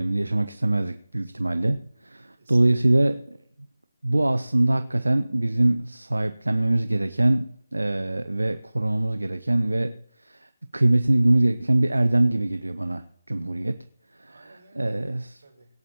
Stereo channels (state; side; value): inverted; both; correlation -0.99